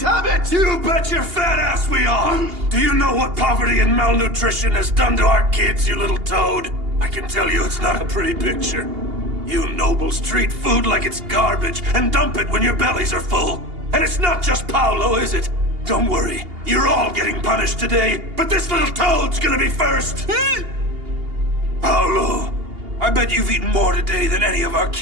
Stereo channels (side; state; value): left; late; 2.8 ms